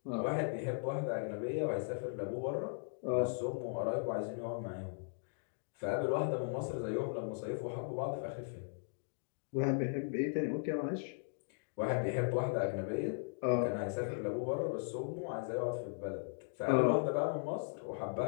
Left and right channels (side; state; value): right; silent; digital silence